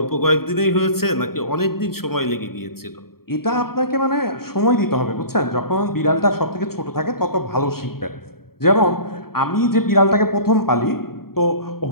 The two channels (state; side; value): late; right; 0.94 ms